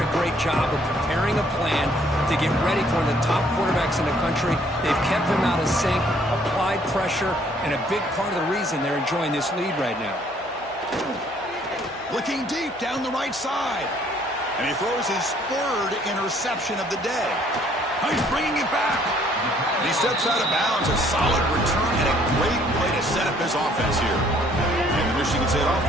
a great job of preparing a plan to get ready for one of the top quarterbacks in the country. They've kept him out of sync, applied pressure, and a big part of the reason they're enjoying this lead right now. Looking deep down the right side. And he throws his third interception of the day. Oh, he's bringing it back. And he steps out of bounds. A solid return and a great play to set up his offense here. And the Michigan State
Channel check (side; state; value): both; normal; correlation 0.62